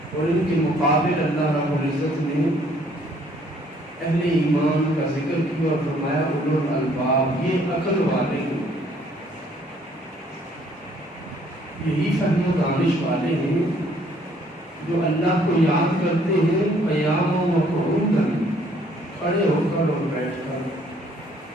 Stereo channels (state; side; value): normal; both; correlation 0.62